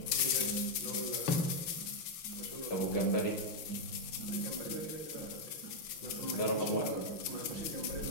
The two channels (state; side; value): late; right; 6.7 ms